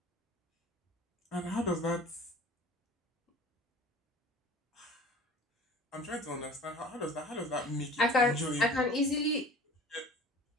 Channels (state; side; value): normal; both; correlation 0.43